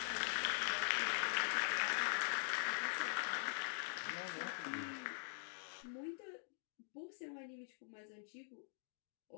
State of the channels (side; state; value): right; silent; digital silence